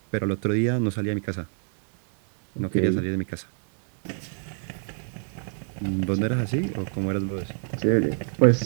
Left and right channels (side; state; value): left; silent; 57 dB below the other